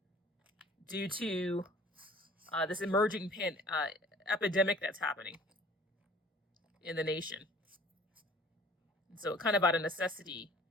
due to this emerging epidemic that's happening in the nation. And so kind of out of necessity,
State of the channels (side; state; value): both; normal; correlation 0.50